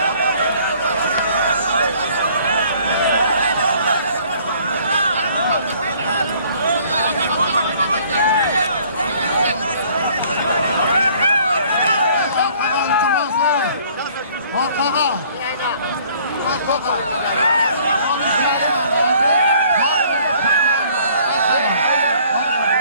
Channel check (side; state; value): both; inverted; correlation -0.58